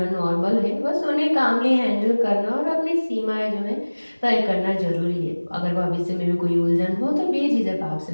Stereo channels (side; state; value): both; inverted; correlation -1.00